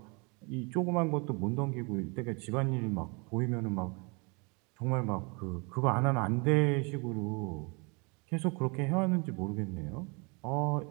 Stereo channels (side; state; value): left; quieter; 31.1 dB